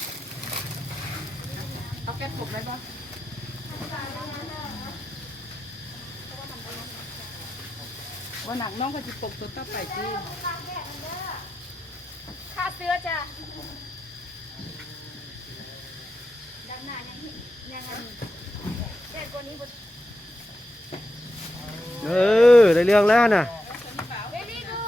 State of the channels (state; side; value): normal; both; correlation 0.88